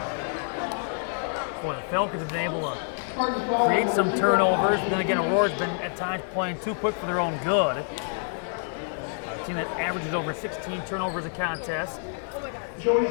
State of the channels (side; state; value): right; silent; 60 dB below the other